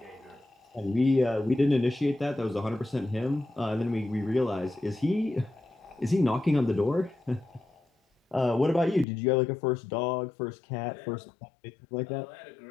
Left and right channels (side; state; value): right; drops out; at 9.1 s